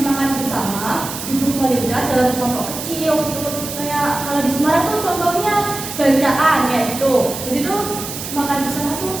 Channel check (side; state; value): right; noise; hiss, 8 dB below the sound